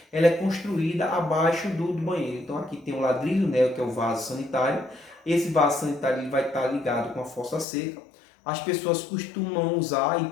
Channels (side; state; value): right; drops out; at 7.7 s